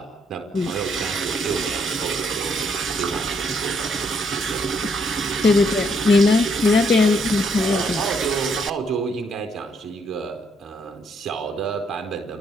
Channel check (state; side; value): normal; both; correlation 0.71